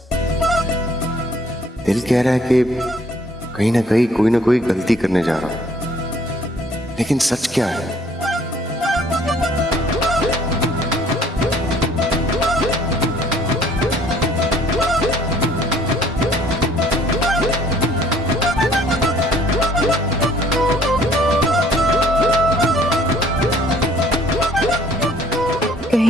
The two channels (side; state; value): both; normal; correlation 0.58